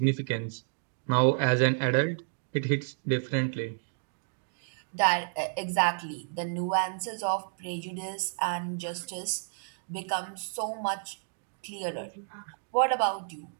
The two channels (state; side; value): silent; left; digital silence